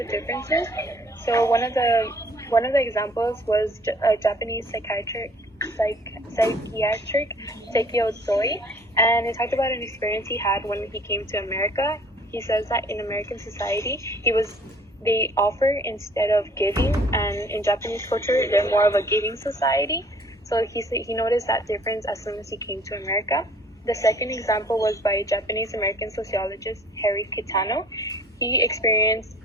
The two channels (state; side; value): normal; both; correlation 0.55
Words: differences. So one of the examples was a Japanese psychiatric Sekio Tsoi, and it talked about an experience he had when he came to America. He says that in American society, they offer instead of giving, and in Japanese culture, they're more of a giving society. So he noticed that difference as soon as he came to America. The second example was by Japanese-American sociologist Harry Kitano. He experienced